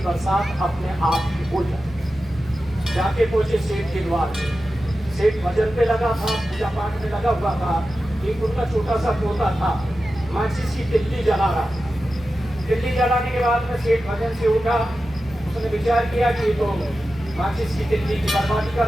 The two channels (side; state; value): both; normal; correlation 0.93